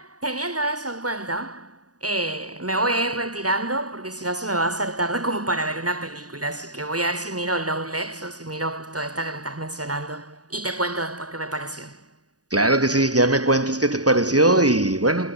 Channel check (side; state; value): left; late; 0.68 ms